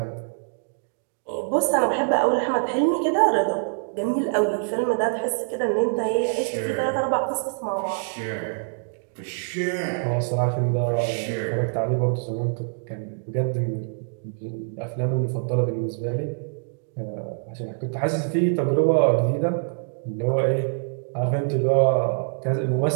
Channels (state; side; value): silent; left; digital silence